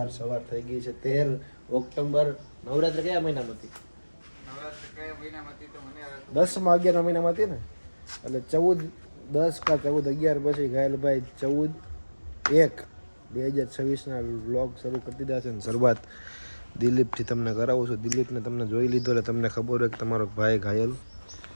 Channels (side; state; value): both; inverted; correlation -1.00